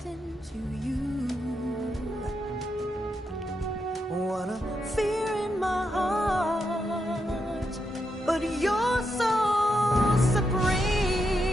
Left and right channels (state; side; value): normal; both; correlation 0.83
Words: into you. What a fear in my heart, but you're so supreme.